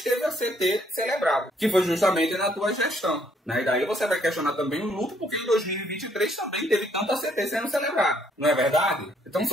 teve a CT celebrado, que foi justamente na tua gestão. E daí você vai questionar também o lucro, porque em 2023 também teve tanta CT sendo celebrada. Não é verdade? Então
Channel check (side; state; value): both; normal; correlation 0.68